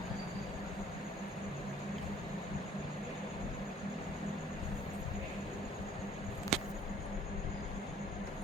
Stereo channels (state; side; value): normal; both; correlation 0.57